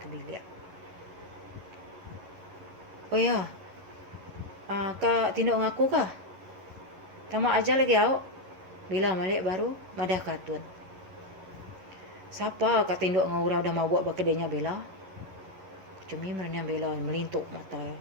ke bilik. Oh ya. Kak tinduk ngaku kah? Tamak aja lagi awak. Bila malik baru madah katun. Siapa kak tinduk ngau dah mau buat bakedenya bela? Cumi merenang bela melintuk mata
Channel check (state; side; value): late; left; 11 ms